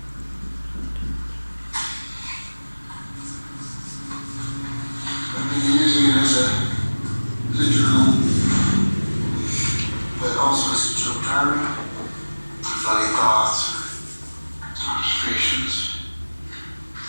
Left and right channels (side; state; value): both; inverted; correlation -1.00